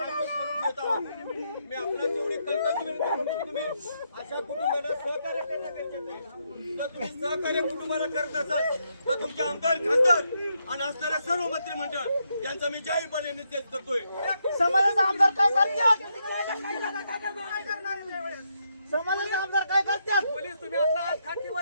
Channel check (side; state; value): both; inverted; correlation -0.79